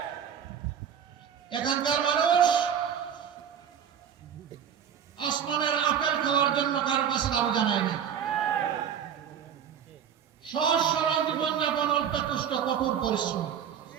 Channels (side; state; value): left; quieter; 8.5 dB